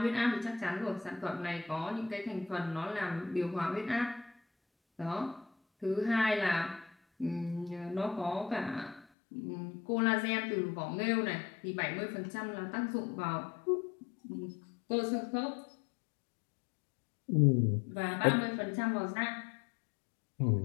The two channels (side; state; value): right; drops out; at 9.1 s